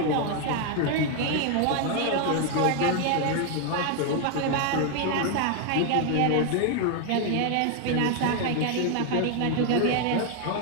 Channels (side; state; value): both; different; correlation 0.01